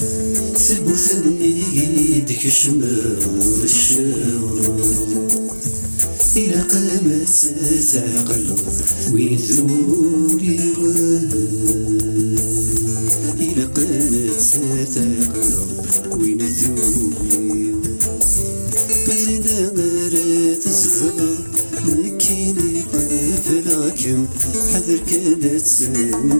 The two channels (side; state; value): both; inverted; correlation -1.00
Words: ثبتني ديك شمال الشوارد، إلى قامت تعقل وين ذولي ورد، إلى قامت تعقل وين ذولي مزينا غير تزغر مكيني قفلاكم حذر كانت